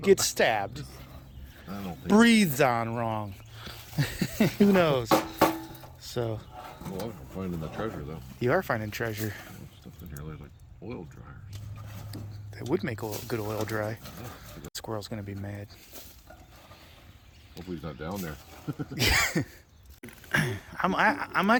get stabbed. I don't think. Breathed on wrong. Who knows? So, Well, I'm finding the treasure though. you are finding treasure. Stuff in here like oil dryers. That would make good oil dry. Squirrel's gonna be mad. Hopefully he's not down there. I'm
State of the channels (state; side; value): identical; both; correlation 1.00